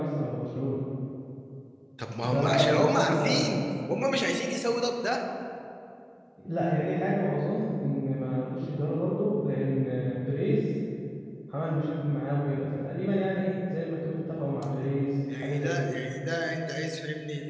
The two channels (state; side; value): identical; both; correlation 1.00